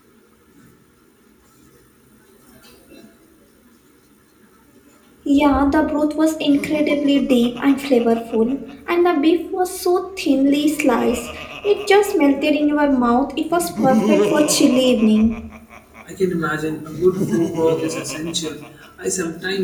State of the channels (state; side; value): identical; both; correlation 1.00